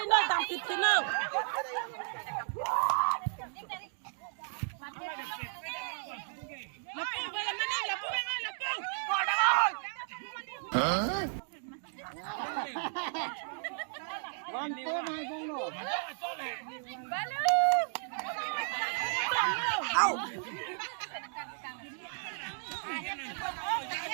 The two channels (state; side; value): silent; left; digital silence